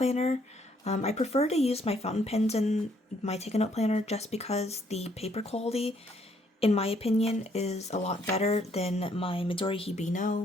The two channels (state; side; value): normal; both; correlation 0.68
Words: I prefer to use my fountain pens in my Take a Note planner just because the paper quality, in my opinion, is a lot better than my Midori